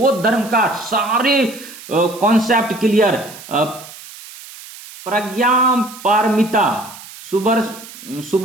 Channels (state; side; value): noise; right; hiss, 17 dB below the sound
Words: धर्म का सारे कॉन्सेप्ट क्लियर। प्रज्ञा पारमिता,